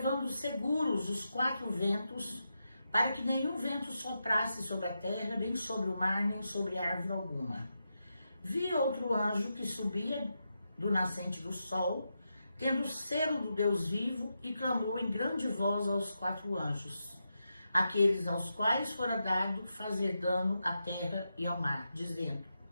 seguros os 4 ventos, para que nenhum vento soprasse sobre a terra, nem sobre o mar, nem sobre árvore alguma. Vi outro anjo que subia do nascente do sol, tendo o selo do Deus vivo, e clamou em grande voz aos 4 anjos, aqueles aos quais fora dado fazer dano à terra e ao mar, dizendo:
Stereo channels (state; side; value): inverted; both; correlation -0.87